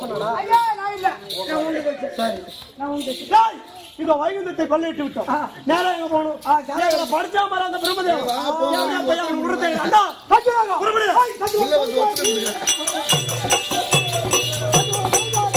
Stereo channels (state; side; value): identical; both; correlation 1.00